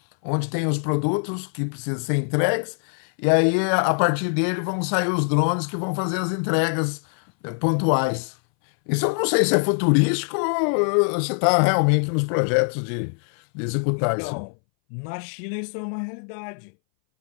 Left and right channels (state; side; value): silent; right; 62 dB below the other